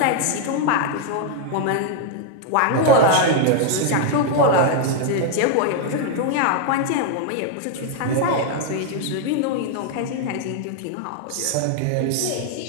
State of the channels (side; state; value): both; different; correlation 0.00